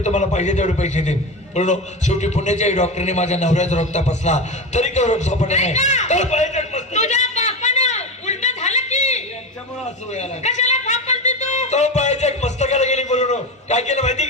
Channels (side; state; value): both; normal; correlation 0.22